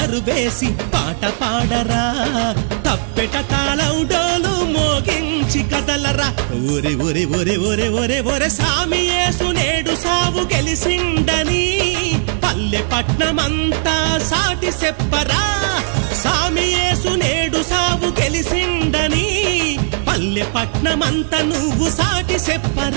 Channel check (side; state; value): left; silent; digital silence